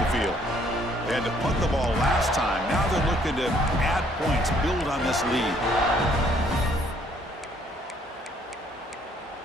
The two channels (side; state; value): both; normal; correlation 0.64